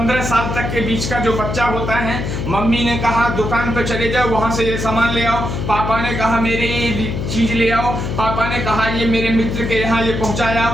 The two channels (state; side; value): noise; left; hum, 3 dB below the sound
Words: साल तक के बीच का जो बच्चा होता है, मम्मी ने कहा दुकान पे चले जाओ, वहां से ये सामान ले आओ, पापा ने कहा मेरे ये चीज ले आओ, पापा ने कहा ये मेरे मित्र के यहाँ ये पहुंचाया,